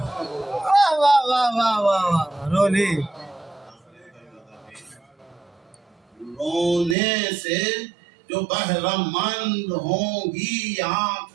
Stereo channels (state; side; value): drops out; left; at 7.0 s